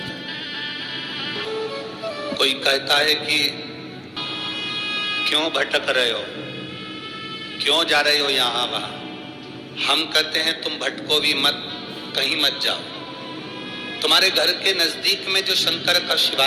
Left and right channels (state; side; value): identical; both; correlation 1.00